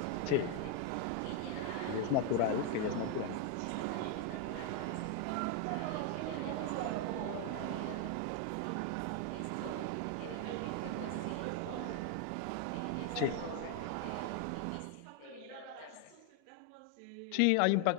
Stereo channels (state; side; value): different; both; correlation 0.01